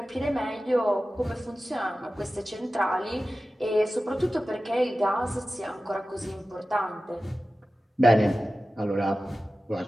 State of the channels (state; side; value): normal; both; correlation 0.95